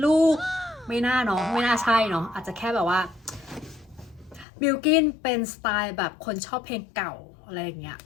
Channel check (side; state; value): right; drops out; at 4.5 s